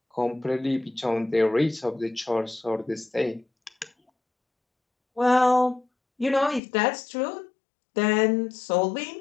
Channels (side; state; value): right; drops out; at 6.6 s